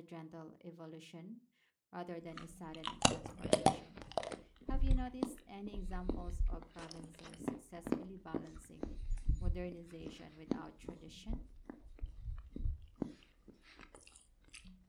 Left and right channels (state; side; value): identical; both; correlation 1.00